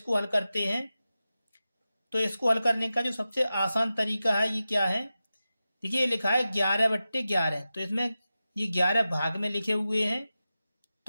हल करते हैं। तो इसको हल करने का जो सबसे आसान तरीका है ये क्या है, देखिए ये लिखा है 11/11, तो इसमें ये 11 भाग में लिखे हुए हैं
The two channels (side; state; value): both; inverted; correlation -0.93